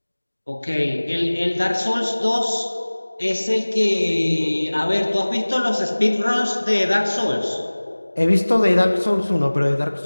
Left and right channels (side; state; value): both; inverted; correlation -1.00